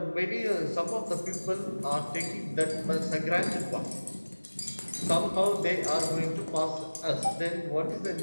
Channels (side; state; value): both; inverted; correlation -1.00